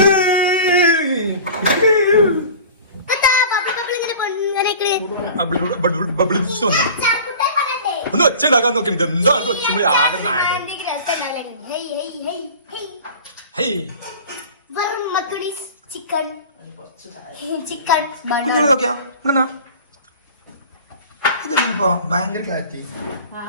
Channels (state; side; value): inverted; both; correlation -0.40